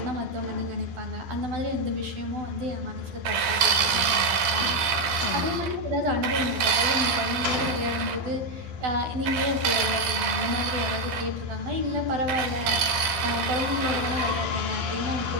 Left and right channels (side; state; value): left; late; 12 ms